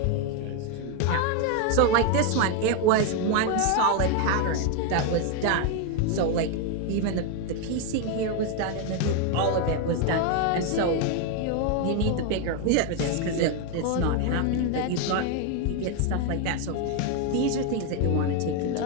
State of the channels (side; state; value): both; different; correlation 0.01